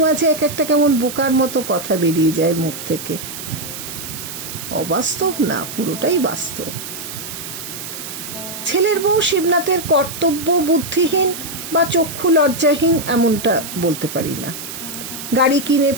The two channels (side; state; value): right; noise; hiss, 9 dB below the sound